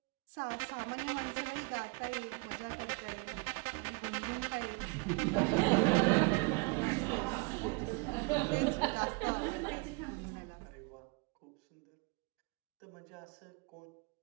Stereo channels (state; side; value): quieter; left; 29.0 dB